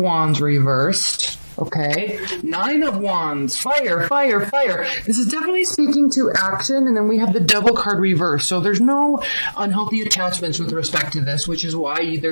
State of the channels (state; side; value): inverted; both; correlation -1.00